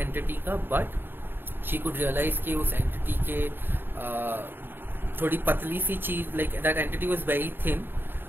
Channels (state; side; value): late; left; 0.098 ms